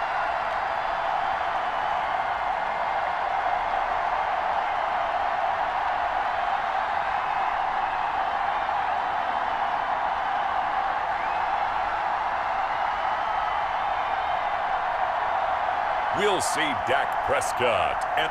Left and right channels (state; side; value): identical; both; correlation 1.00